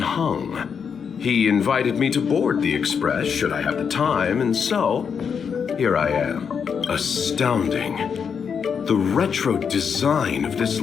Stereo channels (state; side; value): quieter; right; 6.7 dB